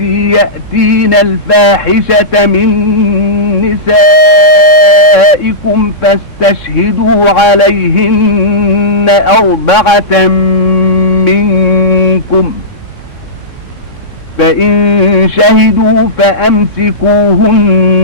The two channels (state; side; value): late; right; 3.6 ms